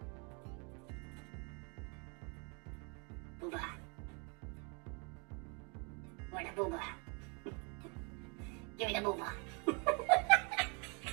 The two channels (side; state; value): left; quieter; 33.5 dB